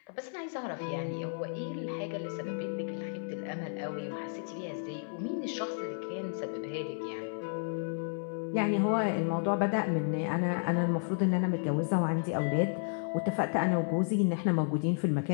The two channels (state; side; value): silent; right; 56 dB below the other